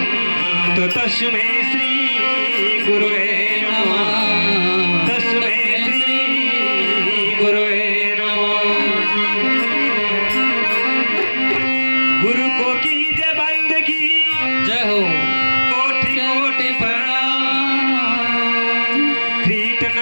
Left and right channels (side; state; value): both; inverted; correlation -1.00